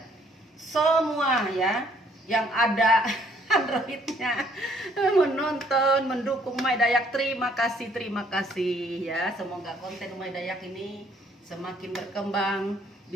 Semua ya yang ada Androidnya menonton, mendukung Umay Dayak, terima kasih ya. Semoga konten Umay Dayak ini semakin berkembang,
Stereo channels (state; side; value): normal; both; correlation 0.64